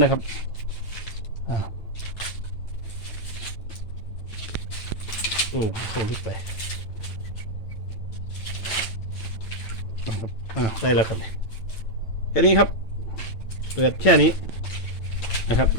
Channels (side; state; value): right; late; 9.0 ms